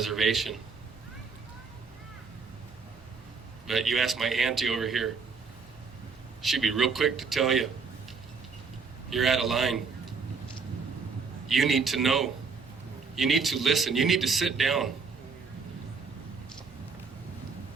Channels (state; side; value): quieter; left; 5.0 dB